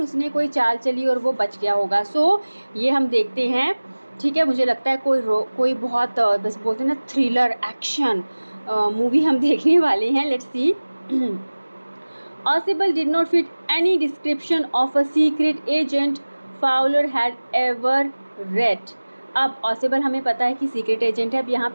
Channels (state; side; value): inverted; both; correlation -1.00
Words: कोई चाल चली और वो बच गया होगा. सो ये हम देखते हैं, ठीक है. मुझे लगता है कोई बहुत बस बोलते हैं ना थ्रिलर एक्शन मूवी हम देखने वाले हैं. Let's see. Possible did not fit any description of a secret agent Fowler had ever read. अब Possible हमें पता है कि सीक्रेट एजेंट है. अब यहाँ